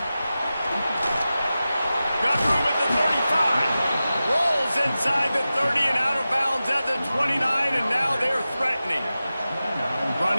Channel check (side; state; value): both; inverted; correlation -0.94